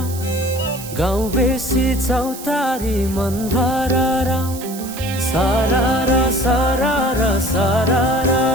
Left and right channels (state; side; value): noise; right; hiss, 13 dB below the sound